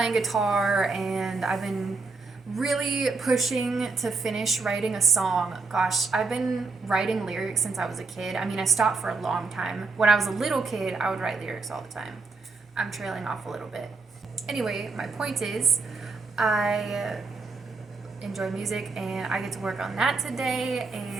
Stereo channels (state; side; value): quieter; left; 4.0 dB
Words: guitar and I've been really pushing to finish writing a song. Gosh, I've been writing lyrics since I was a kid. I mean, I stopped for a long time. When I was a little kid, I would write lyrics all the time. I'm trailing off a little bit. Anyway, my point is, I enjoy music and I get to work on that today,